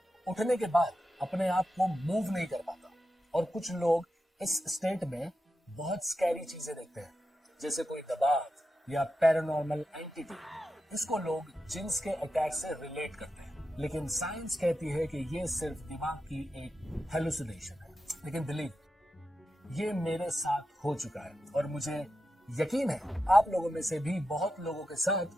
उठने के बाद अपने आप को मूव नहीं कर पाता, और कुछ लोग इस स्टेट में बहुत स्कैरी चीजें देखते हैं, जैसे कोई दबाव या पैरानॉर्मल एंटिटी। इसको लोग जिन्स के अटैक से रिलेट करते हैं, लेकिन साइंस कहती है कि ये सिर्फ दिमाग की एक हेलुसिनेशन है। लेकिन बिलीव, ये मेरे साथ हो चुका है और मुझे यकीन है आप लोगों में से भी बहुत लोगों के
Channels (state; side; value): normal; both; correlation 0.89